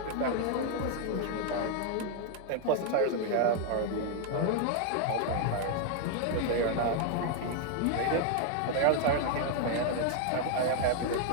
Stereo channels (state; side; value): different; both; correlation 0.00